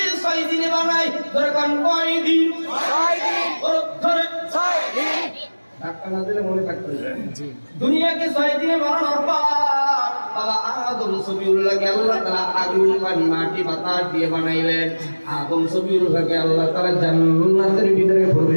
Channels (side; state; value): both; inverted; correlation -1.00